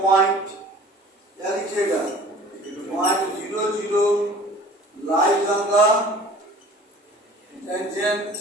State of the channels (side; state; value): both; normal; correlation 0.47